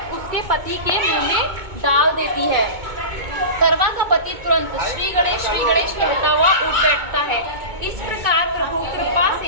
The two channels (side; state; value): left; late; 2.2 ms